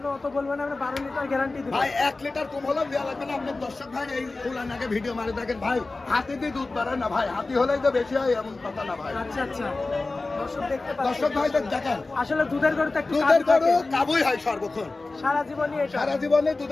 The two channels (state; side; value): quieter; right; 3.4 dB